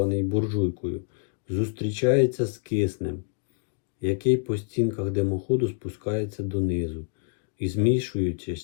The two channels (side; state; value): right; quieter; 39.1 dB